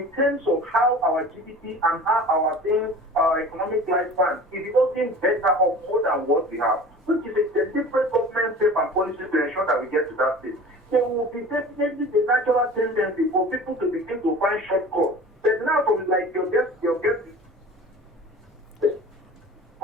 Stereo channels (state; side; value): normal; both; correlation 0.40